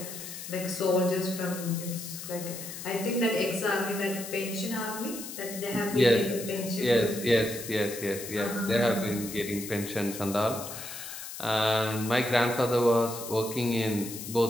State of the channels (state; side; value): noise; left; hiss, 10 dB below the sound